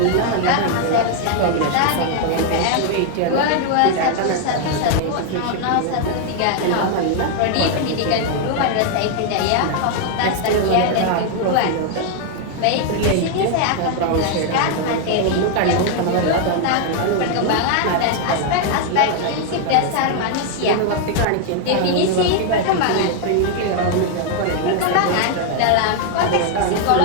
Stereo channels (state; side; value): different; both; correlation 0.00